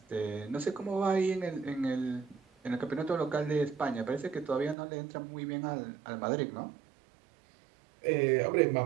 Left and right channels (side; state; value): left; drops out; at 4.8 s